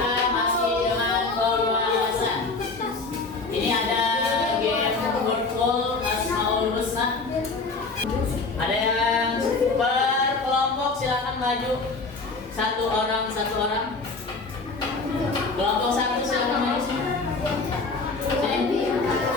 masih dengan pembahasan. Ini ada game wordful Asmaul Husna. Ada yang per kelompok, silakan maju. Satu orang. Kelompok satu silakan maju. Sini.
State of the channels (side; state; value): right; quieter; 3.9 dB